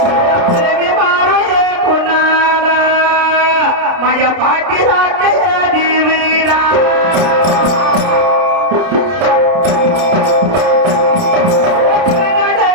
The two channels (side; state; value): left; late; 30 ms